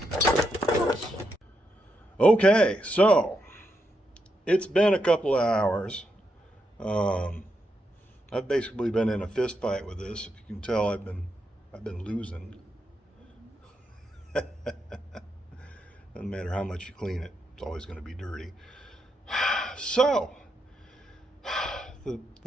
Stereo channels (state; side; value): normal; both; correlation 0.82